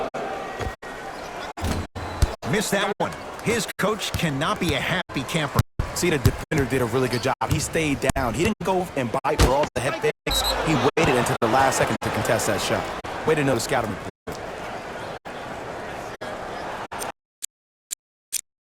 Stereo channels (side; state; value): both; identical; correlation 1.00